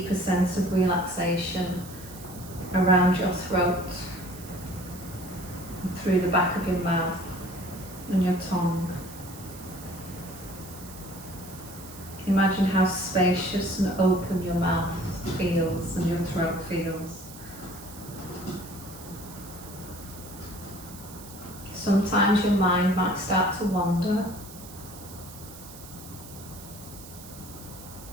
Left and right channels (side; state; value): right; noise; hiss, 16 dB below the sound